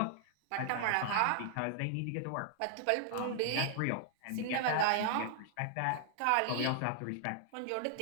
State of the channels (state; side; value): different; both; correlation 0.00